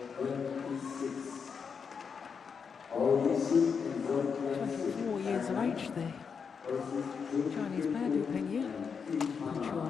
26. OSIM World 24 years of age there. Chinese pair, Peng Yu.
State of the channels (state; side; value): quieter; right; 6.1 dB